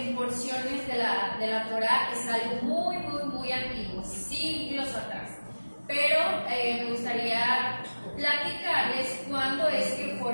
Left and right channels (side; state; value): both; inverted; correlation -1.00